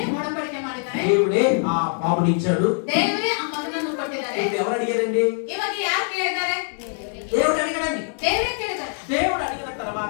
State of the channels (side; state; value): right; silent; 63 dB below the other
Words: ಒಡಂಬಡಿಕೆ ಮಾಡಿದ್ದಾರೆ, దేవుడే ఆ బాబుని ఇచ్చాడు. ದೇವರೇ ಆ ಮಗನನ್ನು ಕೊಟ್ಟಿದ್ದಾರೆ. ఇప్పుడు ఎవరు అడిగారండి? ಇವಾಗ ಯಾರು ಕೇಳಿದ್ದಾರೆ? దేవుడు అడిగాడండి. ದೇವರೇ ಕೇಳಿದ್ದಾರೆ. దేవుడు అడిగిన